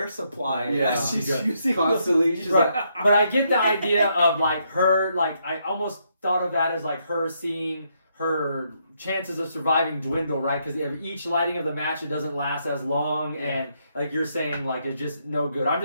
supply Yeah. as she's Yeah. using Constantly, she's Right. like, But I get the idea of like her, like I almost thought of that as like her seeing her chances of surviving dwindle, right? Because each lighting of the match, it doesn't last as long, and like you're saying, like it's just no good. I'm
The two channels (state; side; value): inverted; both; correlation -0.76